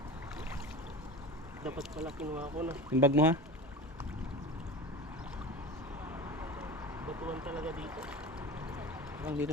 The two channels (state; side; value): normal; both; correlation 0.32